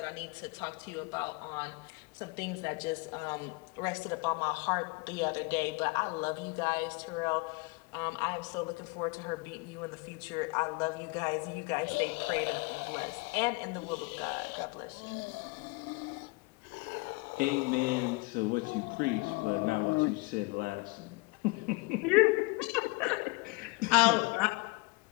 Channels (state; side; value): quieter; right; 26.7 dB